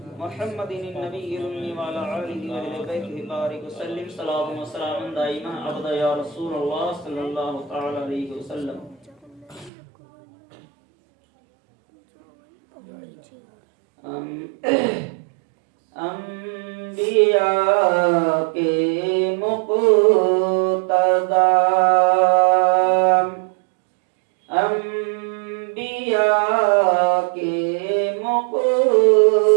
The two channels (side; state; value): left; drops out; at 9.7 s